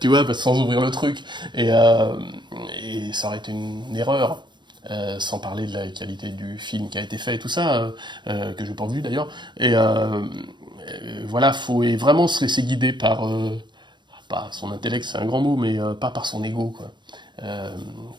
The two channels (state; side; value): late; left; 0.22 ms